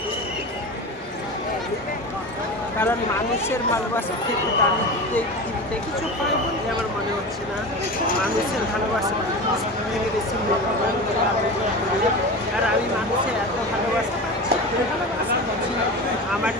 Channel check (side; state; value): both; normal; correlation 0.28